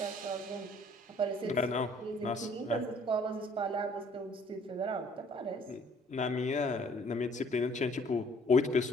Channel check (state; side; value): normal; both; correlation 0.59